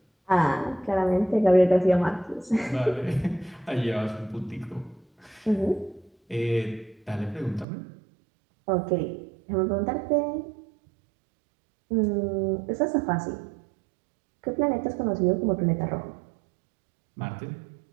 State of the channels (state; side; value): drops out; left; at 7.7 s